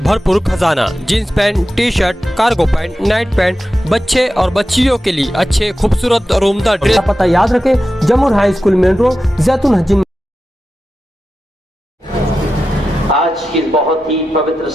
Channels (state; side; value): normal; both; correlation 0.92